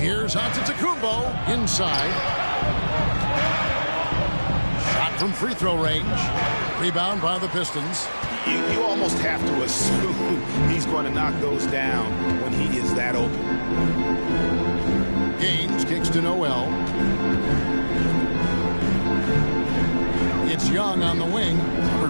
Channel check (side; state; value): both; inverted; correlation -1.00